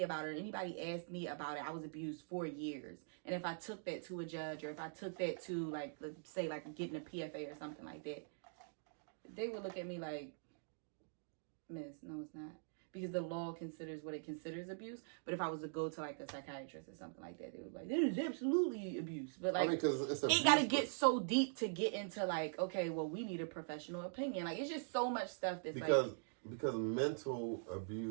about it, or anybody asked me about it, I was abused for years. And if I took that to a judge, or if I took that to, like, let's say, like, getting a PFA or something like that, they would look at me like, miss, no, it's not. Because the law considers what it considers abuse. But if I was to go to, like, a psychiatrist or something like that, they would be like, this is absolutely abuse. But, like, it got to get so deep to get into, like, okay, well, we need a professional opinion. Like, it's just so much stuff that's, Because mental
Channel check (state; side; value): silent; left; digital silence